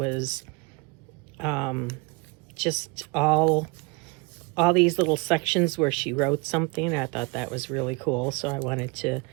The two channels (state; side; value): quieter; left; 27.1 dB